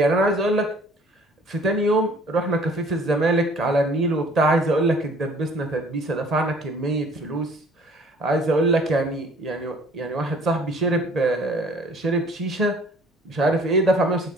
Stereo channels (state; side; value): normal; both; correlation 0.54